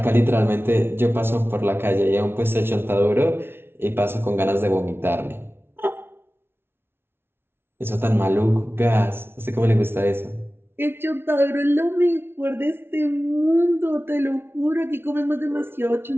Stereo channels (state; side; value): late; left; 0.11 ms